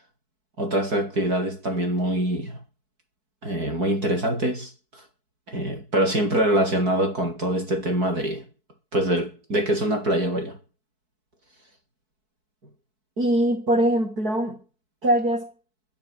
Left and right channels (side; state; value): left; late; 4.6 ms